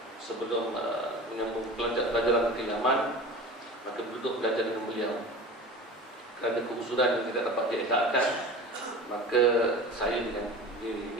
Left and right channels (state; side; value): normal; both; correlation 0.35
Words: sebelum menyambung pelajaran ke Yaman, maka duduk belajar dengan beliau. Kerana keusuran yang tidak dapat dielakkan, maka saya